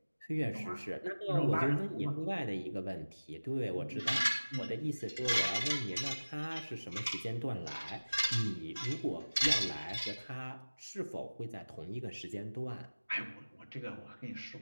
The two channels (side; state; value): both; inverted; correlation -1.00